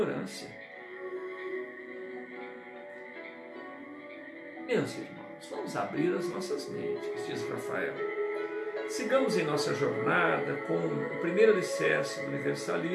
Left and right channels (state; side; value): identical; both; correlation 1.00